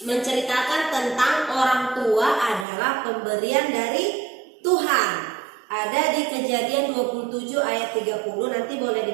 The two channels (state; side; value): drops out; left; at 2.7 s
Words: menceritakan tentang orang tua adalah pemberian dari Tuhan. Ada di Kejadian 27 ayat 30, nanti boleh